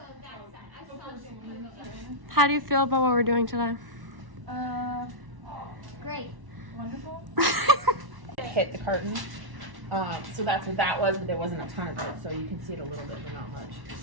How do you feel about what we're doing today? Great. Wonderful. Hit the curtain. So that's what that was, but there wasn't a ton of it, so you can see it a little bit, but not much.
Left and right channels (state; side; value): late; left; 1.1 ms